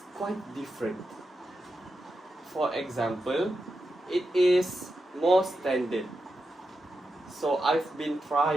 quite different. For example, it is more standard. So I've been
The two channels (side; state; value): both; normal; correlation 0.88